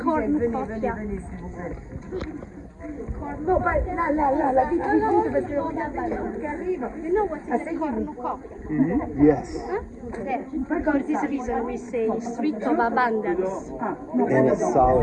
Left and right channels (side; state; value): both; identical; correlation 1.00